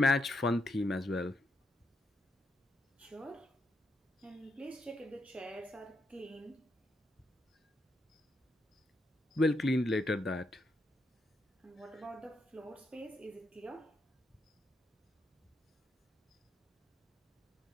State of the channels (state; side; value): normal; both; correlation 0.79